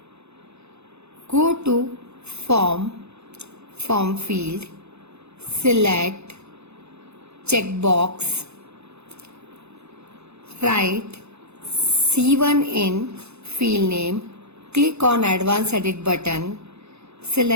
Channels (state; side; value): late; left; 0.80 ms